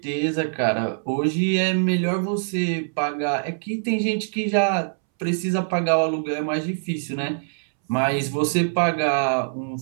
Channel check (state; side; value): silent; left; 63 dB below the other